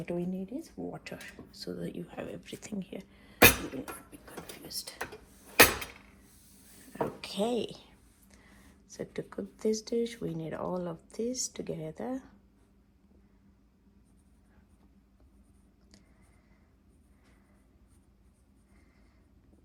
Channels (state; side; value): identical; both; correlation 1.00